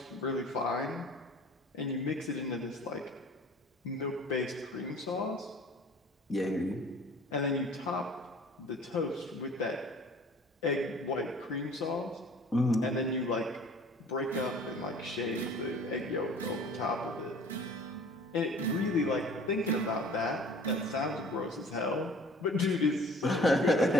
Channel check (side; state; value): both; normal; correlation 0.48